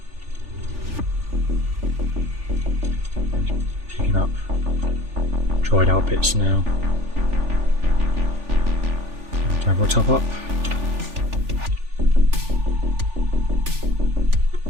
Up dried out bits now. We'll top up.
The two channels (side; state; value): left; late; 3.4 ms